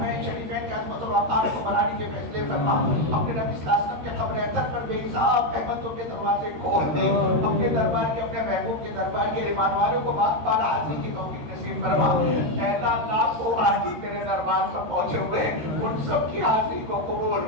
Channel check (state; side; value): late; left; 13 ms